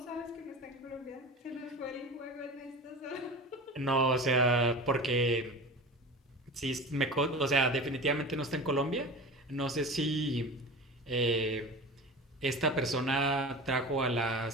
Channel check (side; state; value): both; normal; correlation 0.32